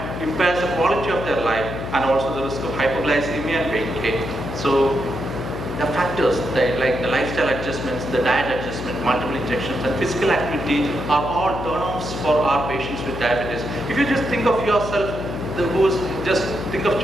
impairs the quality of their life, and also the risk of hypoglycemia and weight gain. So the factors like the lifestyle adjustments, the diet adjustment, multiple injections, and physical activity are all turn-offs for our patients with diabetes. If you just think of yourself, just think of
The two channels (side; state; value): left; noise; hum, 7 dB below the sound